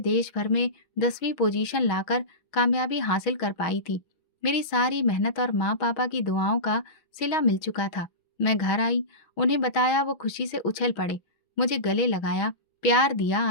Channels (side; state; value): right; late; 6.3 ms